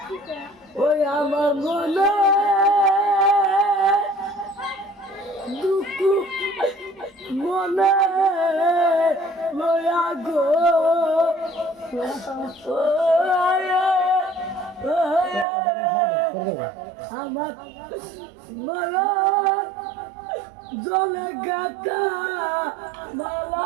ওই আমার মনে দুঃখ মনে লয়া গো আমার মারা জলে গাতা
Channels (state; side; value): drops out; left; at 15.5 s